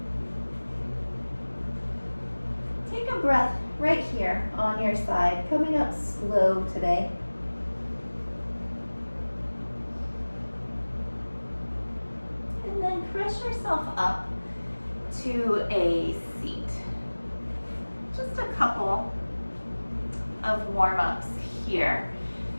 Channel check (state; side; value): inverted; both; correlation -1.00